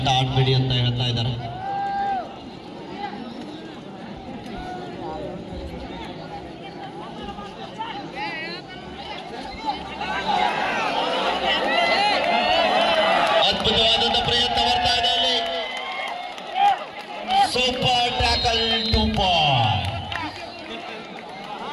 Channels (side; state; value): both; identical; correlation 1.00